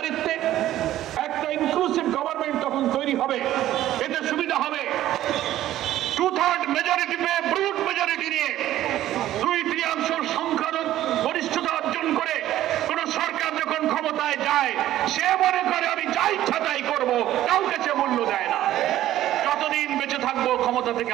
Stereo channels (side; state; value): left; quieter; 13.5 dB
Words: একটা ইনক্লুসিভ গভর্নমেন্ট তখন তৈরি হবে। এতে সুবিধা হবে 2/3 মেজরিটি পেয়ে ব্রুট মেজরিটি নিয়ে 2/3 সংখ্যার গরিষ্ঠতা অর্জন করে কোন সরকার যখন ক্ষমতায় যায় সে মনে করে আমি যা ইচ্ছা তাই করবো, কাউকে সে মূল্য দেয় না। যতদিন বেঁচে থাকবো ক্ষমতা থেকে